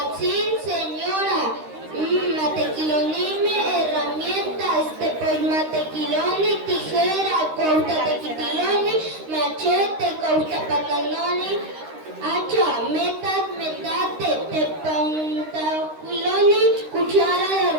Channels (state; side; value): late; left; 13 ms